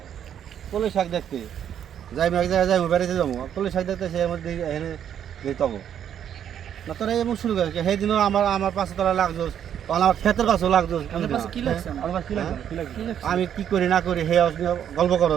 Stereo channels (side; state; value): left; quieter; 9.4 dB